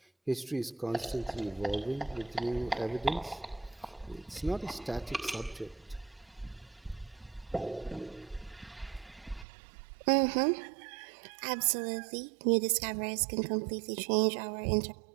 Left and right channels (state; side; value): drops out; left; at 9.5 s